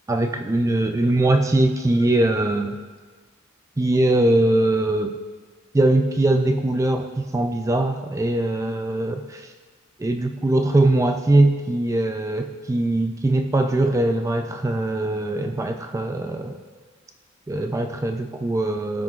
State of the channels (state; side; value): normal; both; correlation 0.85